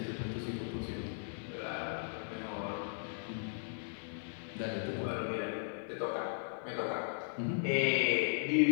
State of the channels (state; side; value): silent; right; digital silence